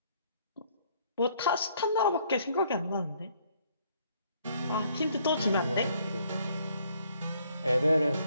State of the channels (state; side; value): inverted; both; correlation -0.65